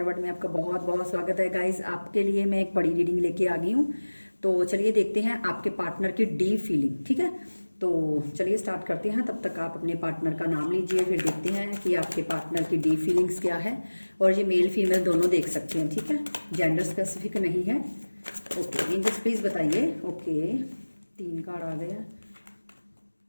वर्ल्ड में आपका बहुत बहुत स्वागत है गाइस। आपके लिए मैं एक बड़ी रीडिंग लेके आ गई हूँ। तो चलिए देखते हैं आपके पार्टनर की डीप फीलिंग। ठीक है, तो चलिए स्टार्ट करते हैं। तब तक आप अपने पार्टनर का नाम लीजिए, फिर देखते हैं कि आपके पार्टनर की डीप फीलिंग्स क्या है। और ये मेल फीमेल दोनों देख सकते हैं, ठीक है, जेंडर स्पेसिफिक नहीं है। ओके एंजल्स प्लीज बताइए। ओके 3 कार्ड आ गए हैं।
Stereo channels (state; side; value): inverted; both; correlation -1.00